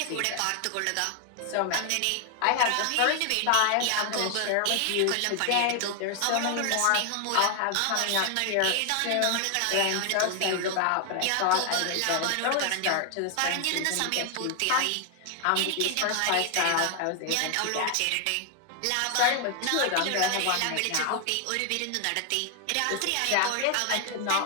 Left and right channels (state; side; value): different; both; correlation 0.00